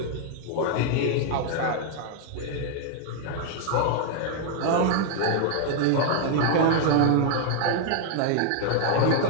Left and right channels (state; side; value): different; both; correlation 0.00